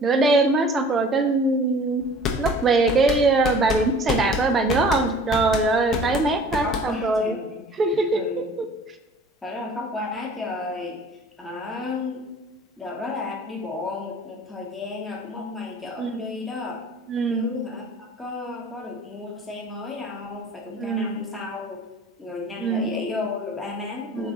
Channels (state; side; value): normal; both; correlation 0.48